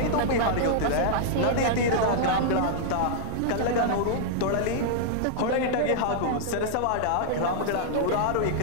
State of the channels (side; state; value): both; different; correlation -0.01